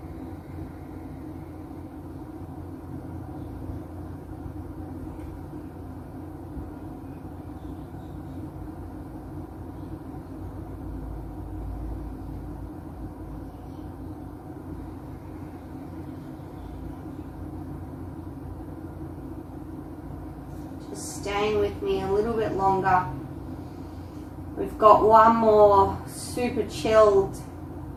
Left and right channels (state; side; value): identical; both; correlation 1.00